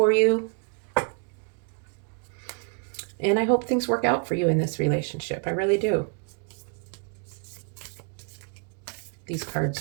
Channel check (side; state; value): left; quieter; 36.5 dB